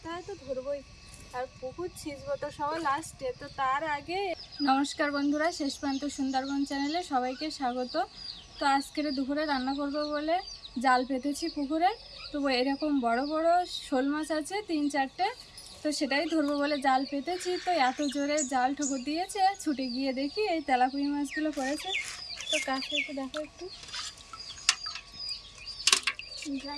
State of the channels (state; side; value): identical; both; correlation 1.00